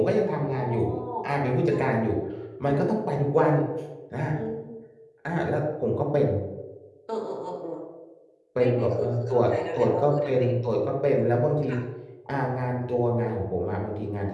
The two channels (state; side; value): identical; both; correlation 1.00